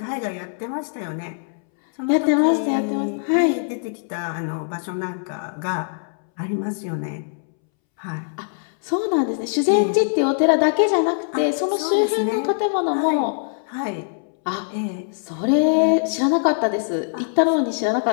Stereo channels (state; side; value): silent; right; 64 dB below the other